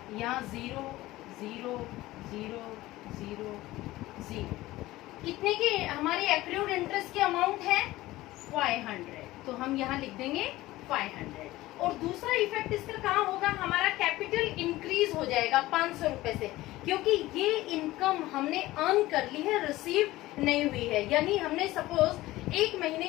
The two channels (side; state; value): right; quieter; 17.5 dB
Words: यहाँ 0 0 0 0 0 कितने की हमारी एक्रूड इंटरेस्ट की अमाउंट है 500, तो हम यहाँ लिख देंगे 500। और दूसरा इफेक्ट इसका कहाँ होगा, हमारा कैपिटल इंक्रीज हो जाएगा 500 रुपए से, क्योंकि ये इनकम हमने अर्न कर ली है, रिसीव नहीं हुई है। यानी हमने सपोज 1 महीने